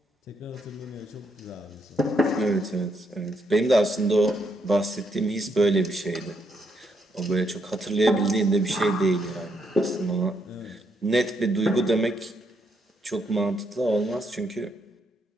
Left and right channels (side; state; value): both; normal; correlation 0.77